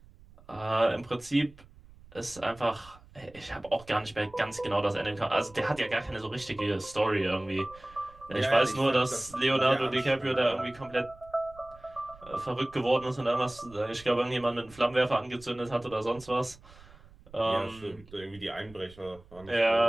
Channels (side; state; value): right; noise; rumble, 23 dB below the sound